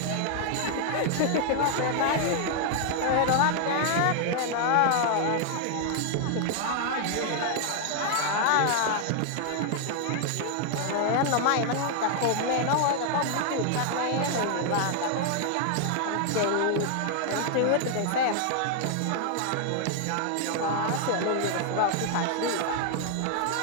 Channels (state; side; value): different; both; correlation 0.00